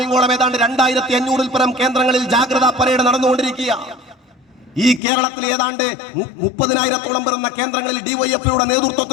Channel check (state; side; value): drops out; right; at 5.0 s